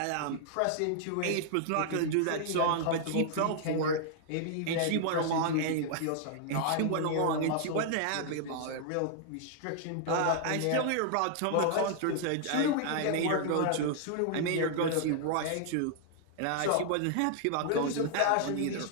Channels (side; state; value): both; different; correlation -0.01